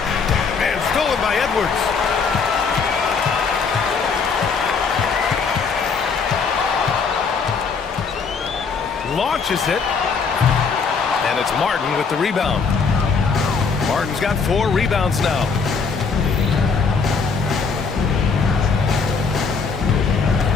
And stolen by Edwards. Launches it. And it's Martin with the rebound. Martin's got 4 rebounds now.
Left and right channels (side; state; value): right; quieter; 5.2 dB